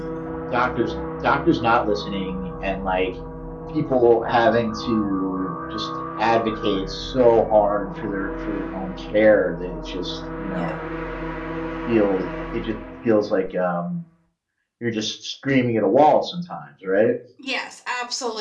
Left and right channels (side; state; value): both; identical; correlation 1.00